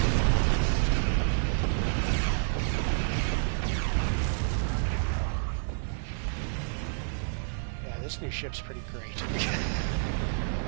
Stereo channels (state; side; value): silent; left; 58 dB below the other